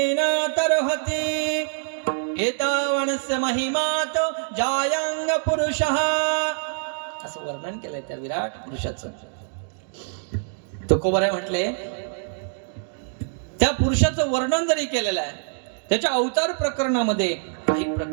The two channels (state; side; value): silent; left; digital silence